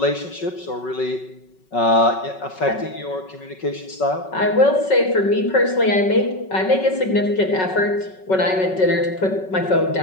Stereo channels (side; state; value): right; late; 5.3 ms